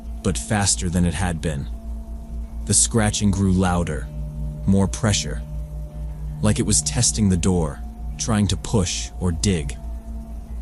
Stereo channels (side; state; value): both; identical; correlation 1.00